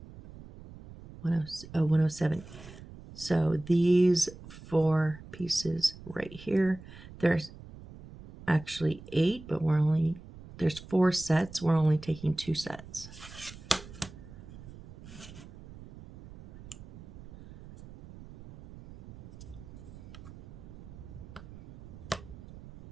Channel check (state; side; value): noise; right; rumble, 16 dB below the sound